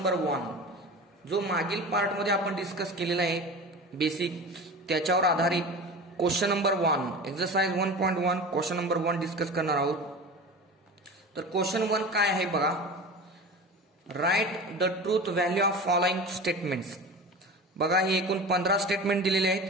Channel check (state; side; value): normal; both; correlation 0.33